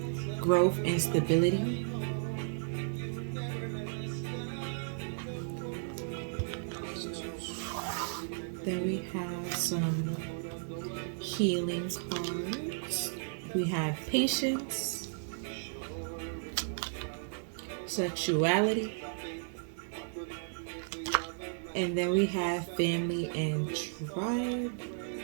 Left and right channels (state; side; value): silent; left; digital silence